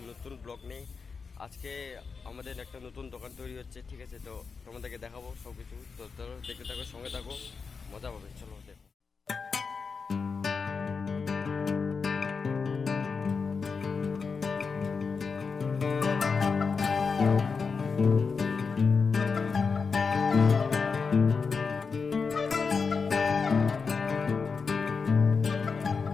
নতুন ব্লগ নিয়ে। আজকে আমাদের একটা নতুন দোকান তৈরি হচ্ছে, ঠিক আছে? তো তোমাদেরকে দেখাবো সব কিছু। তো চলো দেখতে থাকো, সঙ্গে থাকো, মজা পাবে। চলো দেখো।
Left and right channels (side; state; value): right; quieter; 5.1 dB